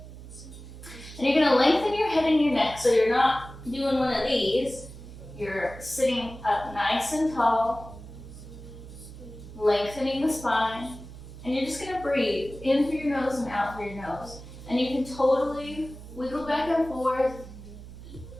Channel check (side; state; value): right; noise; hum, 15 dB below the sound